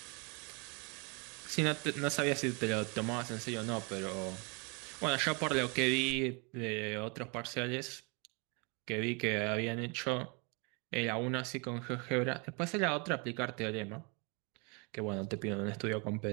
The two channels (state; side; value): quieter; left; 32.2 dB